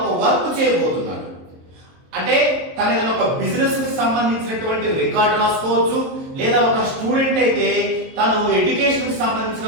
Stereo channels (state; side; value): late; left; 23 ms